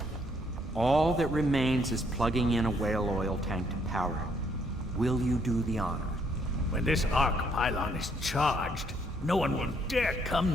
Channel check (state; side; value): normal; both; correlation 0.69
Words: All that remains is plugging in a whale oil tank to power it. Will you do the honor? When this arc pylon is charged, no one will dare